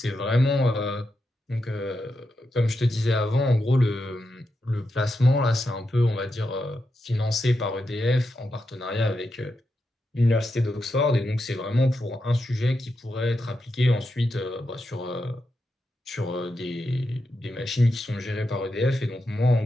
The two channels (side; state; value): both; normal; correlation 0.86